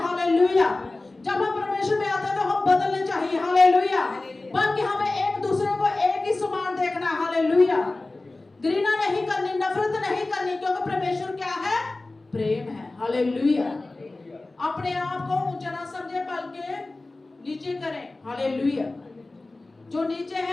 जब हम परमेश्वर में आते हैं तो हम बदलने चाहिए। हालेलुया। बल्कि हमें एक दूसरे को एक ही समान देखना। हालेलुया। घृणा नहीं करनी, नफरत नहीं करनी, क्योंकि परमेश्वर क्या है? प्रेम है। हालेलुया। अपने आप को ऊंचा ना समझे, बल्कि नीचे करें। हालेलुया। जो नीचे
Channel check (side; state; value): right; quieter; 3.1 dB